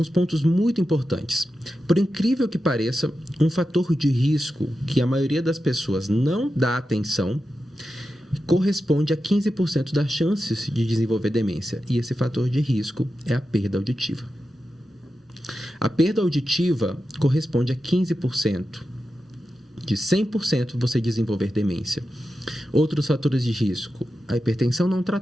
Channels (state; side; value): normal; both; correlation 0.90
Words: pontos muito importantes. Por incrível que pareça, um fator de risco que a maioria das pessoas não dá atenção corresponde a 15% das chances de desenvolver demência. E esse fator de risco é a perda auditiva. A perda auditiva corresponde a 15%. De 100% você desenvolver demência. Outros fatores de risco: a hipertensão não